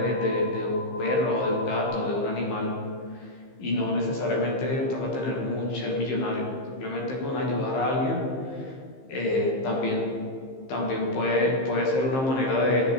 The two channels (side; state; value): right; late; 15 ms